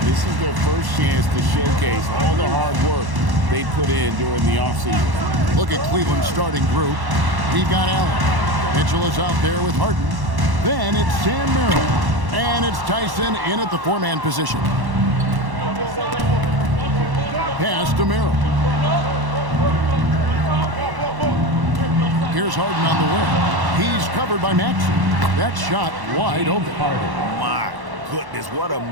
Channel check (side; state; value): left; late; 1.1 ms